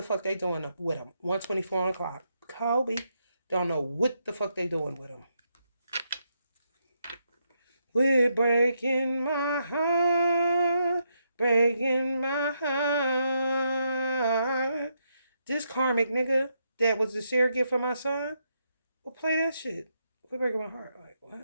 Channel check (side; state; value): both; inverted; correlation -0.80